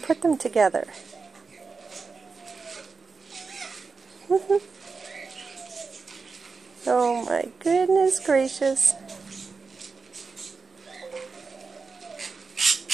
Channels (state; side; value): quieter; left; 4.7 dB